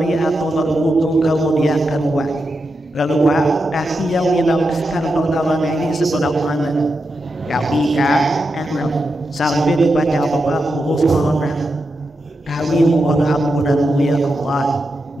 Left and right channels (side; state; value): both; normal; correlation 0.87